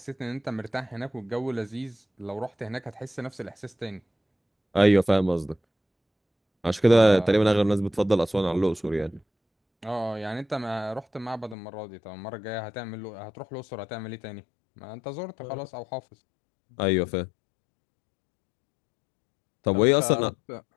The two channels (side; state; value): right; drops out; at 11.6 s